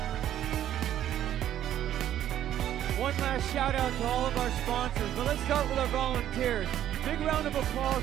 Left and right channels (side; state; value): left; quieter; 11.4 dB